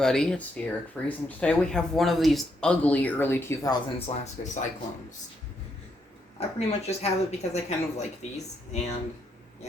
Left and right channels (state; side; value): normal; both; correlation 0.77